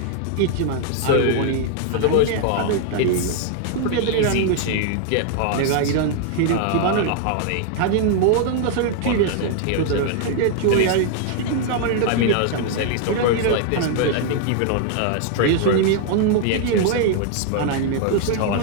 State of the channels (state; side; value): different; both; correlation 0.00